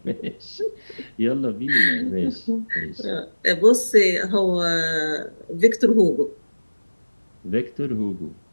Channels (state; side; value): inverted; both; correlation -1.00